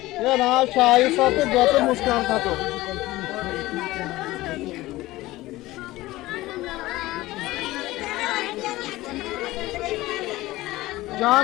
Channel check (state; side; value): quieter; right; 18.0 dB